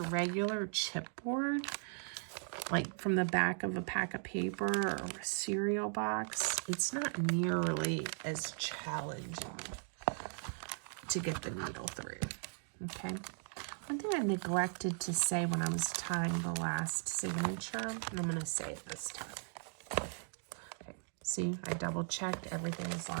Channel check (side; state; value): left; silent; 52 dB below the other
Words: chipboard, like from the back of a pack of paper or a cereal box, it's not nearly as challenging to get the needle through. Okay. One thing I neglected to say when I was tying the last signature, and I'm going to say it this time. Okay. See, I double checked, everything is